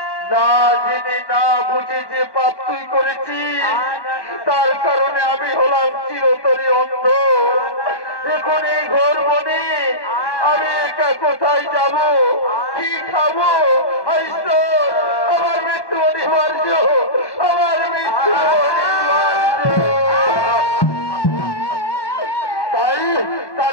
না জেনে না বুঝে যে পাপ তুই করেছিস, তার কারণে আমি হলাম চিরতরে অন্ধ। এখন এই ঘর বনে আমি একা কোথায় যাব, কি খাবো? আমার মৃত্যু অনিবার্য, আমার মৃত্যু অনিবার্য।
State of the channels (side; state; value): right; late; 1.1 ms